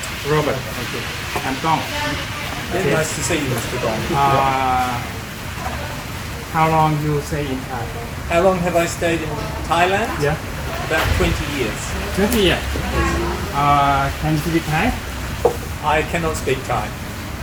Robert. Okay. I'm Gong. Okay. Nice to see you, Mr. Gong. How long you stay in Thai? How long have I stayed in Thailand? Yeah. About 20 years. 20 years. Can you speak Thai? I cannot speak Thai.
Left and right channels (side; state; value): both; identical; correlation 1.00